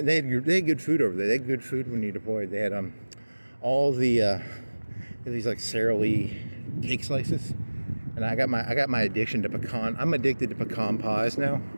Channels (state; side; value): inverted; both; correlation -1.00